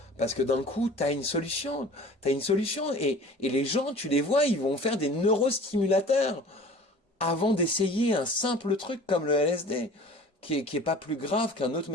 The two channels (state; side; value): normal; both; correlation 0.44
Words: Parce que d'un coup, t'as une solution. T'as une solution. Et les gens, tu les vois, ils vont faire des neurostimulateurs avant d'essayer un simple truc comme le LSD, qui est pas plus grave qu'un autre